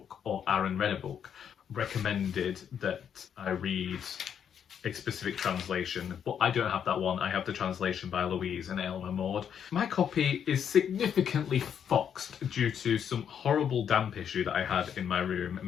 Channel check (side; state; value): right; quieter; 8.3 dB